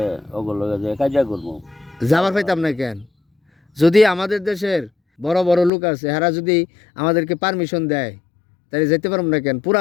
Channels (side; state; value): right; drops out; at 5.7 s